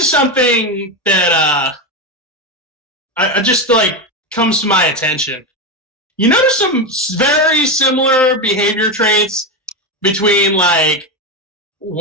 something that I just comes to my attention. You notice some very similar behavior traits between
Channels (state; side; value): normal; both; correlation 0.13